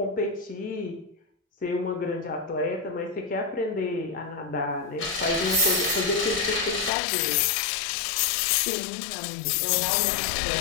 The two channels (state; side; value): drops out; right; at 6.9 s